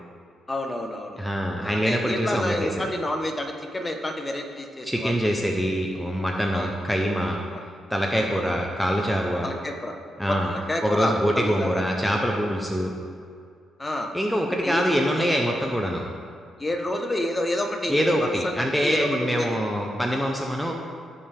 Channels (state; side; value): normal; both; correlation 0.88